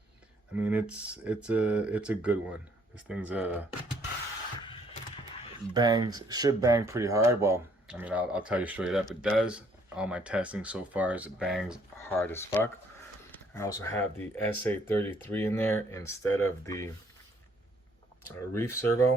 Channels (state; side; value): normal; both; correlation 0.64